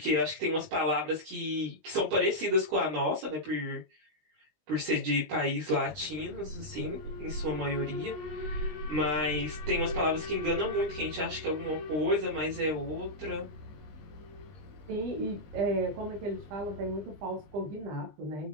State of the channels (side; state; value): left; late; 20 ms